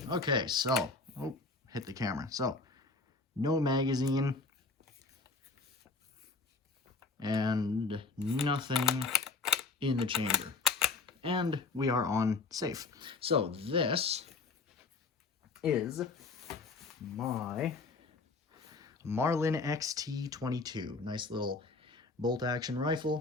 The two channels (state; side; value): quieter; right; 4.1 dB